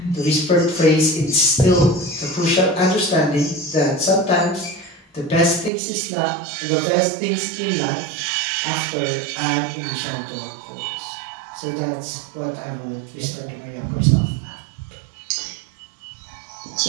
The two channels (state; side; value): drops out; left; at 5.7 s